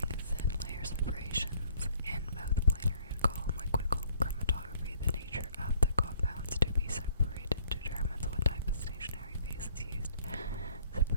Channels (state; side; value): inverted; both; correlation -0.61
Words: thin layer separations in both planar and column liquid chromatography. The nature of the compounds to be separated determines what type of stationary phase is used.